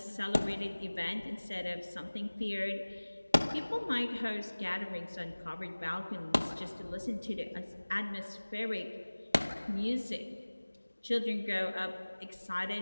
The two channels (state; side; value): inverted; both; correlation -1.00